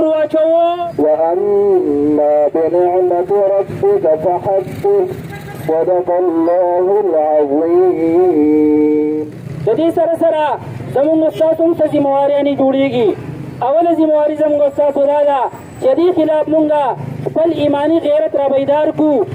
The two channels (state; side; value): identical; both; correlation 1.00